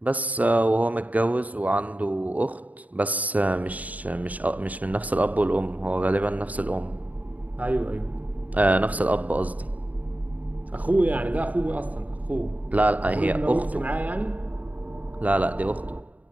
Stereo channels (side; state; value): left; late; 0.074 ms